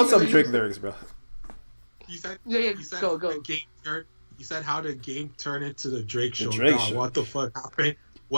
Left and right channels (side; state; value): both; inverted; correlation -1.00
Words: some Drake lyrics, bro. He said, go. He said how the game turned into the Drake show. Show. What the fuck happened?